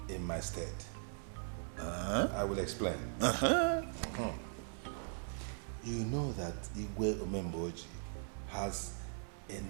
in my stead. I will explain. You know that Igwe Omemboji has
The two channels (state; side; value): silent; left; 51 dB below the other